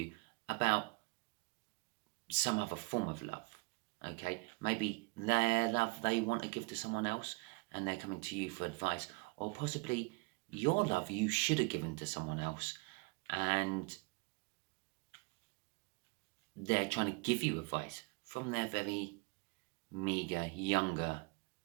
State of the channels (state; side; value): quieter; left; 28.7 dB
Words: about some other form of love. Okay, maybe their love they want to give to someone else and they're coming to you for advice, or possibly your love you should have given to someone else and they're trying to give you advice from their very meager, younger